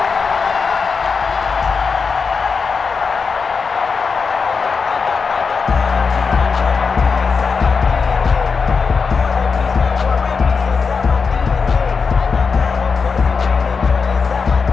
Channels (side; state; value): right; quieter; 5.2 dB